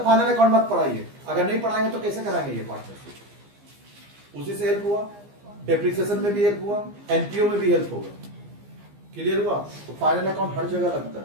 फाइनल अकाउंट मत पढ़ाइए। अगर नहीं पढ़ाएंगे तो कैसे कराएंगे ये पार्टनरशिप? उसी से हेल्प हुआ, डेप्रिसिएशन में भी हेल्प हुआ, एनपीओ में भी हेल्प होगा। क्लियर हुआ? तो फाइनल अकाउंट हर जगह लगता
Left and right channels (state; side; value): late; left; 15 ms